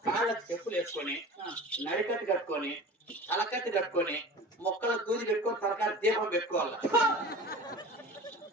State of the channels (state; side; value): normal; both; correlation 0.37